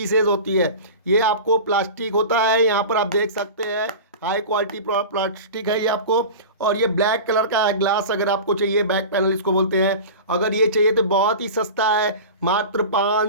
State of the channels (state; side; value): inverted; both; correlation -0.32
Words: होती है, ये आपको प्लास्टिक होता है। यहाँ पर आप देख सकते हैं हाई क्वालिटी प्लास्टिक है ये आपको। और ये ब्लैक कलर का है ग्लास, अगर आपको चाहिए बैक पैनल इसको बोलते हैं। अगर ये चाहिए तो बहुत ही सस्ता है, मात्र